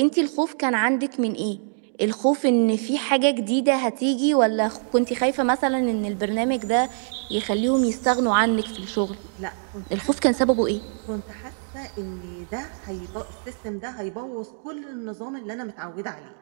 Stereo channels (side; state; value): left; silent; digital silence